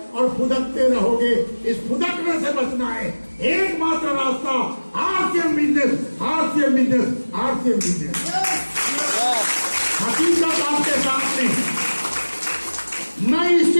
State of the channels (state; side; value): inverted; both; correlation -1.00